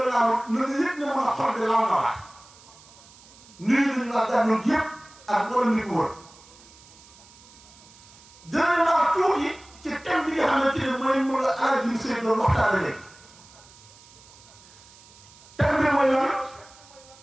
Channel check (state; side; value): noise; right; hiss, 23 dB below the sound